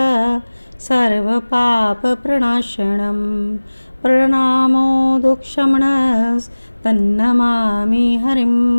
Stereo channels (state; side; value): inverted; both; correlation -1.00